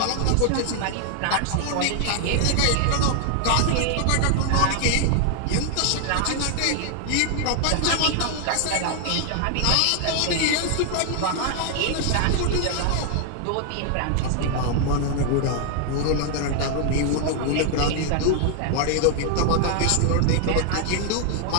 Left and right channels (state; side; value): different; both; correlation 0.00